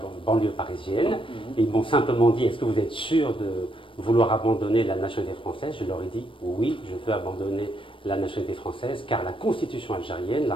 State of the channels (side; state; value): right; late; 0.25 ms